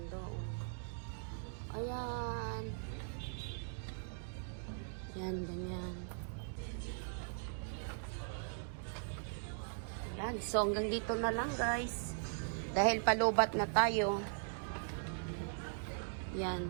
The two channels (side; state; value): left; silent; digital silence